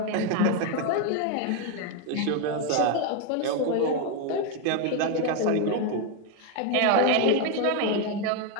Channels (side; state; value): both; different; correlation 0.02